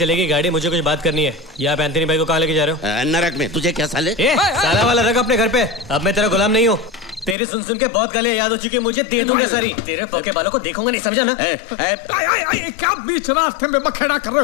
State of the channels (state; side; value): drops out; right; at 7.4 s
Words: गाड़ी? मुझे कुछ बात करनी है। ये आप एंथनी भाई को कहाँ लेके जा रहे हो? नरक में। तुझे क्या साले? साला वाला रख अपने घर पे। अब मैं तेरा गुलाम नहीं हूँ। तेरी सुन के बहुत गालियां याद हो चुकी है मुझे। दे दूंगा सारी। तेरे पोके बालों को देखूंगा नहीं, समझा ना? क्या बीच रास्ते में बखेड़ा कर रहे